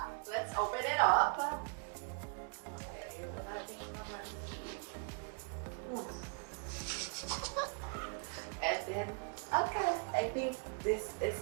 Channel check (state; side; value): quieter; left; 38.8 dB